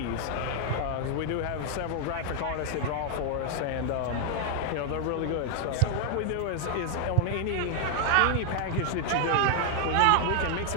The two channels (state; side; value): different; both; correlation 0.00